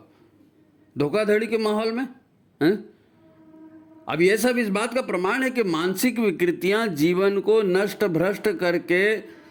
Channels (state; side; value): identical; both; correlation 1.00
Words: धोखाधड़ी के माहौल में हैं? अब ये सब इस बात का प्रमाण है कि मानसिक विकृतियां जीवन को नष्ट भ्रष्ट करके